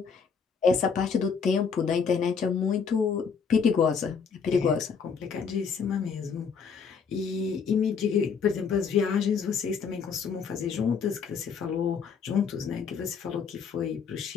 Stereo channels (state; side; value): quieter; right; 6.1 dB